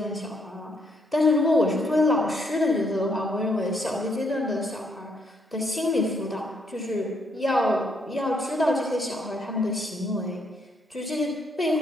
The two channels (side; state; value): both; normal; correlation 0.72